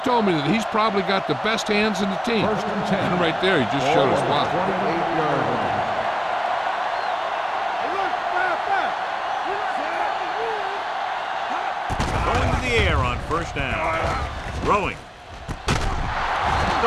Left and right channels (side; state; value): both; identical; correlation 1.00